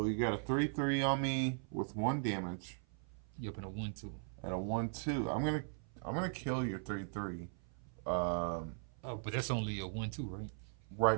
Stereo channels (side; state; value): left; silent; 52 dB below the other